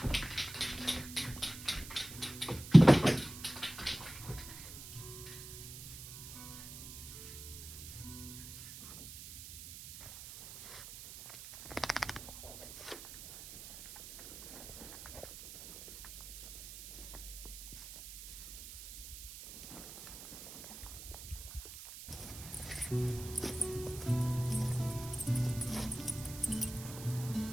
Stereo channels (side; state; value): right; noise; hiss, 13 dB below the sound